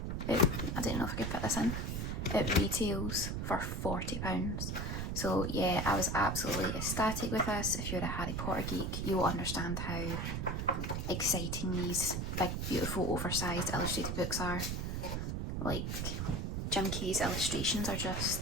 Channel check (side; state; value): right; noise; rumble, 2 dB below the sound